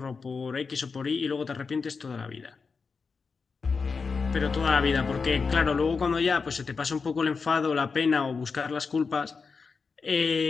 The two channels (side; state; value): right; quieter; 4.9 dB